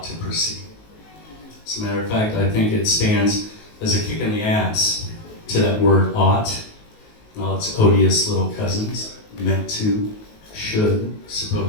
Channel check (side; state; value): right; late; 19 ms